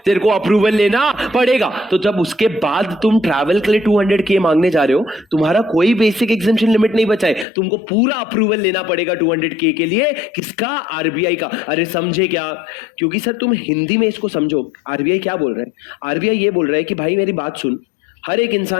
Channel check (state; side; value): drops out; right; at 7.5 s